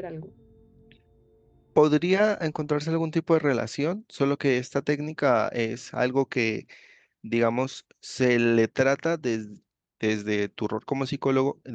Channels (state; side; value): identical; both; correlation 1.00